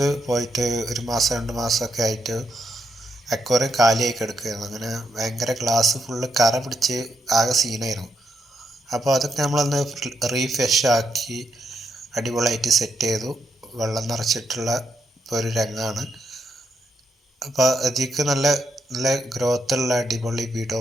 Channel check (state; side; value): normal; both; correlation 0.79